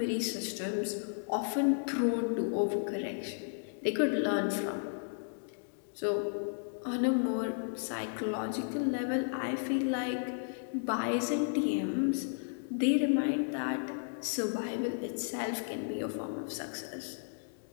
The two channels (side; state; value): right; silent; digital silence